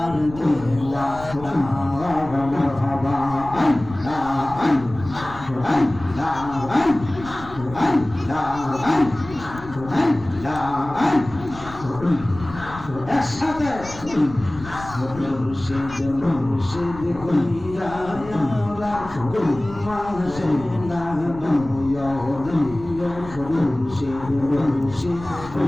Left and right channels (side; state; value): left; noise; rumble, 15 dB below the sound